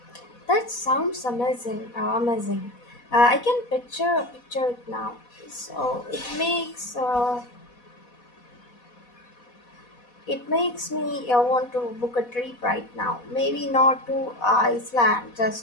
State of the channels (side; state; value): right; late; 4.1 ms